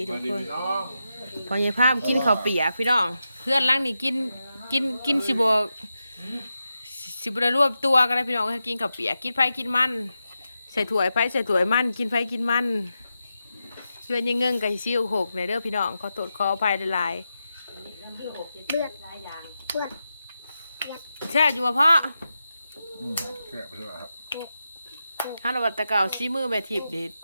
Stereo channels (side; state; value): both; inverted; correlation -0.89